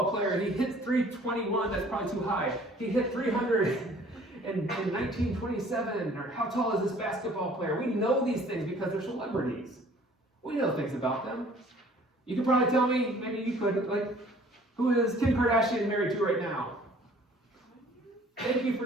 player, and he hit 321, that's probably too high. He hit 300 in 1927. Or how tall is this basketball player? We know these things because they're celebrities. We know things about them. You could probably tell me, maybe you could, like, who is Kim Kardashian married to right now? Thank you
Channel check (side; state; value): both; normal; correlation 0.54